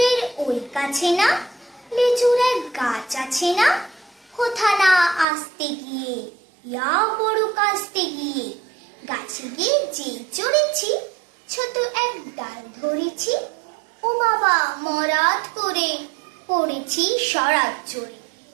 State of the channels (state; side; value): drops out; left; at 5.2 s